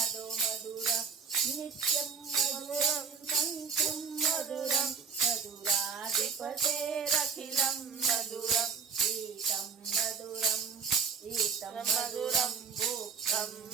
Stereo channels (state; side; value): quieter; left; 5.1 dB